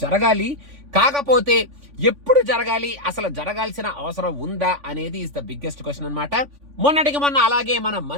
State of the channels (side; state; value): left; late; 3.5 ms